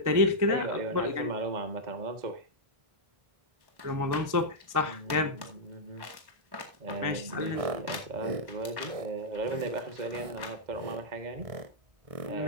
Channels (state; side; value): late; left; 1.1 ms